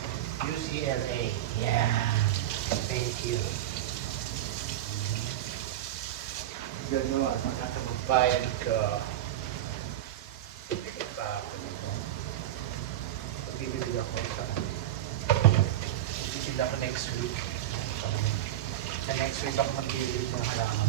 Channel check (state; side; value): quieter; left; 12.7 dB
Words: UCLA. Yeah. Thank you. Gano'n, mga kababayan ko. Magbibili ako next week. Sa next week ako magbibili ng